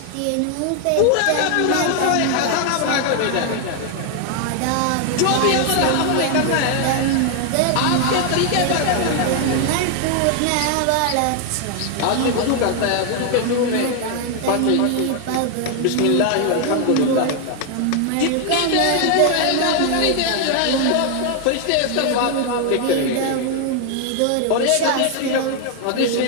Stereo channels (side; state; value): both; different; correlation 0.00